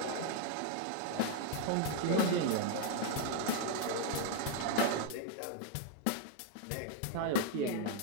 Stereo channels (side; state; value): both; different; correlation 0.00